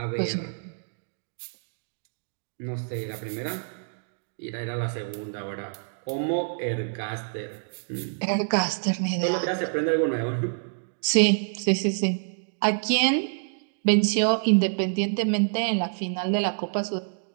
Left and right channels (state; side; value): silent; left; digital silence